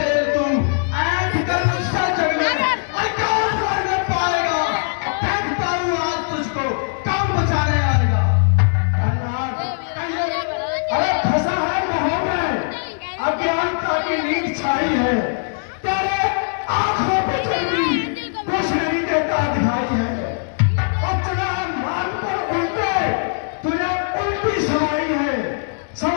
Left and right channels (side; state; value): right; silent; digital silence